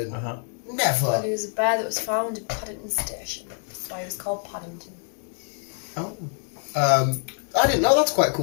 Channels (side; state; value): right; silent; 56 dB below the other